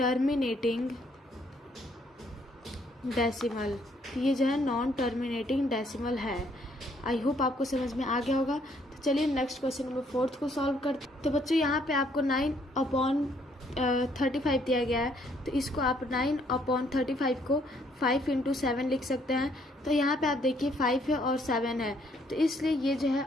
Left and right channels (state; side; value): normal; both; correlation 0.67